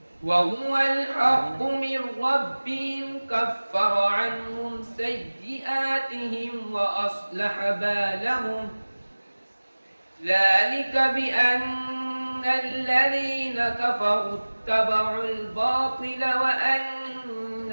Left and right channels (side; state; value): both; inverted; correlation -1.00